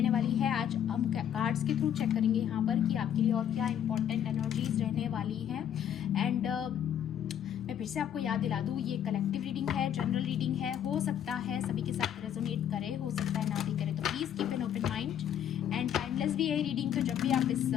वाली है। आज हम कार्ड्स के थ्रू चेक करेंगे यहाँ पर कि आपके लिए और क्या इंपॉर्टेंट एनर्जीज रहने वाली हैं। एंड मैं फिर से आपको याद दिला दूँ, ये कलेक्टिव रीडिंग है, जनरल रीडिंग है, हो सकता है सभी के साथ रेजोनेट करे, हो सकता है ना भी करे, तो please keep an open mind and timeless भी है रीडिंग। तो जब भी आप इस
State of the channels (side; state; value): right; quieter; 9.7 dB